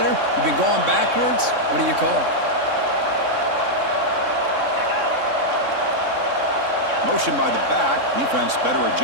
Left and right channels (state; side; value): late; left; 3.6 ms